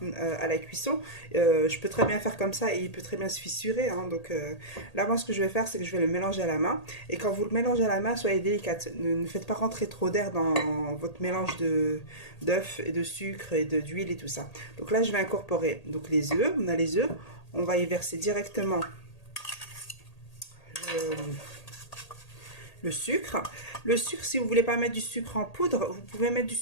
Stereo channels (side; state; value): right; late; 1.8 ms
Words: à la cuisson. Je peux très bien faire comme ça et il peut très bien se fissurer, hein. Donc là, moi, ce que je vais faire, c'est que je vais le mélanger à la main. Et quand vous le mélangez à la main, soyez délicate. Ne faites pas rentrer trop d'air dans votre mélange d'œufs et de sucre et d'huile et tout ça. Donc là, je vais incorporer donc les œufs. On a les œufs. On va y verser directement le sucre. Le sucre, si vous ne voulez pas mettre du sucre en poudre, vous pouvez mettre du